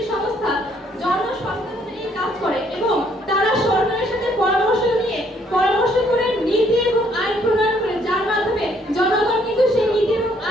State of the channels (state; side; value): normal; both; correlation 0.66